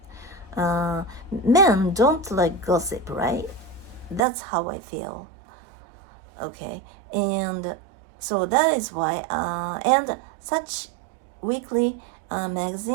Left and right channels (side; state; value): left; drops out; at 4.2 s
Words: Men don't like gossip, right? That's how I feel. Okay, and so that is why, and such weekly